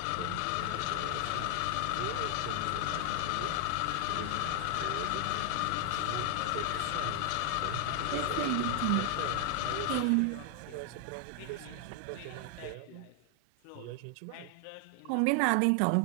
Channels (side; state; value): both; different; correlation 0.00